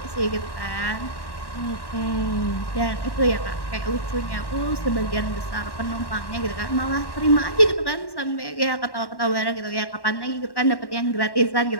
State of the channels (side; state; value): right; late; 1.1 ms